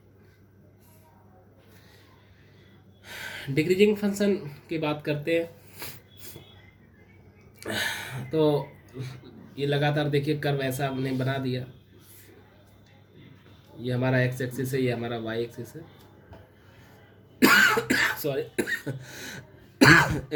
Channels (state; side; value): identical; both; correlation 1.00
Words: डिक्रीजिंग फंक्शन की बात करते हैं तो ये लगातार देखिए कर्व ऐसा हमने बना दिया। ये हमारा एक्स एक्सिस है, ये हमारा वाई एक्सिस है। सॉरी